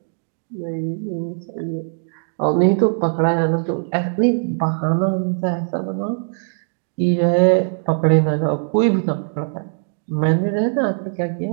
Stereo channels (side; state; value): left; silent; digital silence